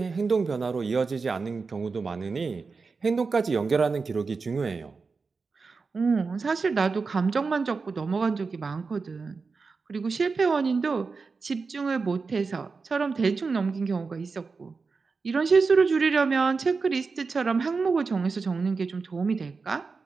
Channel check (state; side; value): quieter; left; 4.6 dB